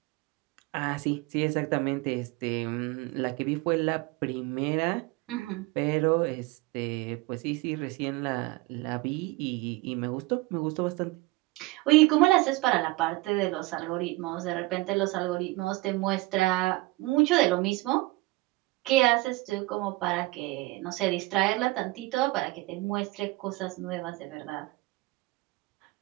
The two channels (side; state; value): left; quieter; 21.7 dB